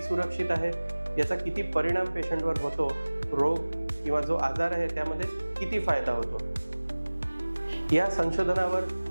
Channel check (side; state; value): both; inverted; correlation -1.00